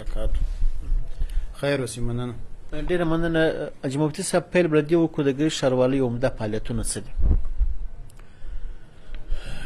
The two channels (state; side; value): identical; both; correlation 1.00